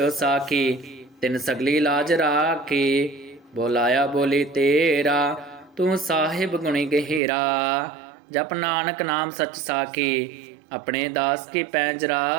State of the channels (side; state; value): left; drops out; at 7.2 s